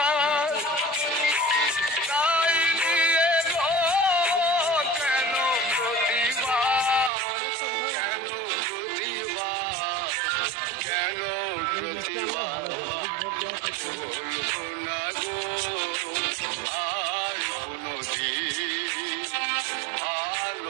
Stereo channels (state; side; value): drops out; left; at 7.1 s